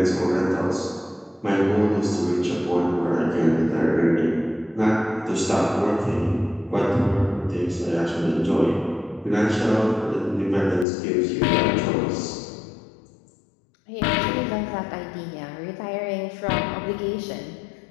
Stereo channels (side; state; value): right; drops out; at 10.9 s